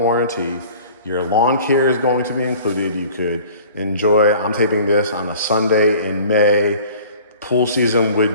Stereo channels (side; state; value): both; inverted; correlation -0.47